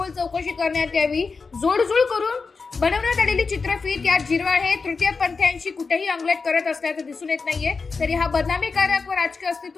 चौकशी करण्यात यावी। जोडजूळ करून बनवण्यात आलेली चित्रफित या झिरवाळ हे तृतीयपंथीयांशी कुठेही अंगलट करत असल्याचं दिसून येत नाहीये। तरी हा बदनामीकारक व राजकीय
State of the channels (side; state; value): right; quieter; 4.6 dB